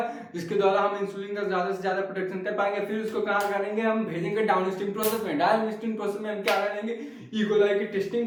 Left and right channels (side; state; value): both; identical; correlation 1.00